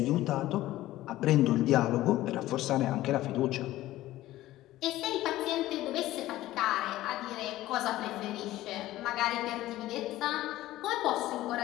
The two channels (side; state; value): right; quieter; 15.6 dB